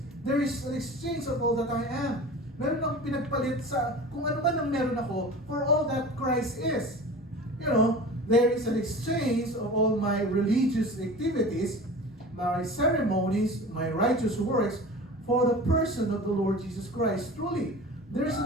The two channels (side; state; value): both; normal; correlation 0.37